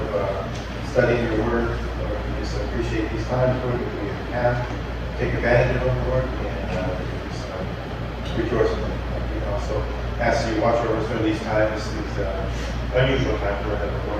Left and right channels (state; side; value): identical; both; correlation 1.00